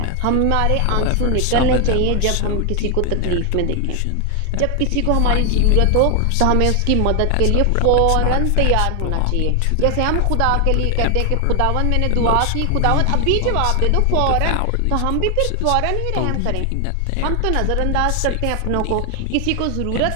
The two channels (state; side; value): different; both; correlation 0.00